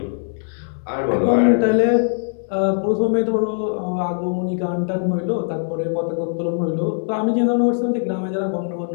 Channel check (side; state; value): right; silent; digital silence